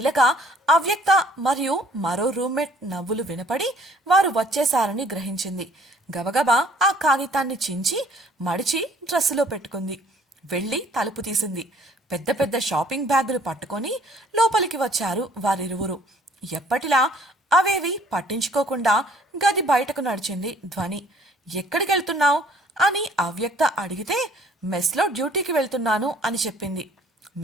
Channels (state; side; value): normal; both; correlation 0.57